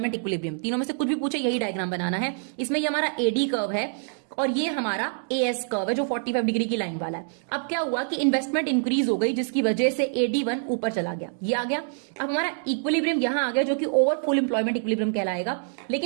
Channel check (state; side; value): silent; left; digital silence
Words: इक्विलिब्रियम। तीनों में से कुछ भी पूछे यही डायग्राम बनाना है। इसमें ये हमारा एडी कर्व है और ये हमारा एएस कर्व है जो 45 डिग्री की लाइन वाला है। अब क्या हुआ कि इन्वेस्टमेंट इंक्रीज हो गई जिसकी वजह से AD1 ऊपर चला गया, ये आ गया। अब हमारा इक्विलिब्रियम यहां आ गया जो कि ओवर फुल एम्प्लॉयमेंट इक्विलिब्रियम कहलाएगा,